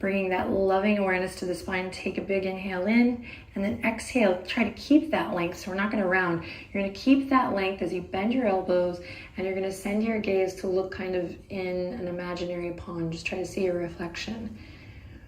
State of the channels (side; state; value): both; identical; correlation 1.00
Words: that loving awareness to the spine. Take a big inhale in, and then exhale. Try to keep that length, so we're not going to round. You're going to keep that length as you bend your elbows, and you're going to send your gaze to look kind of in an imaginary pond. Just try to see your reflection.